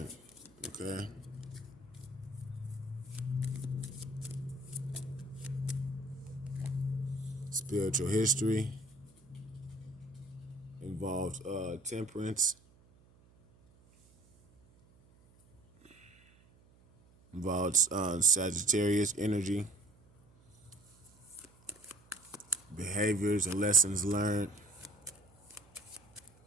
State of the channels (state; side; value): noise; right; hum, 28 dB below the sound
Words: okay? Spiritual history involves temperance, involves Sagittarius energy, behaviors and lessons learned,